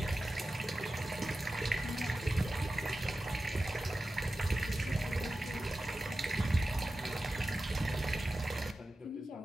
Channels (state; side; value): normal; both; correlation 0.94